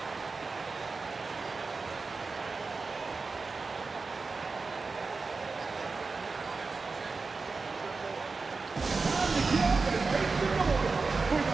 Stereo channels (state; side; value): quieter; left; 4.2 dB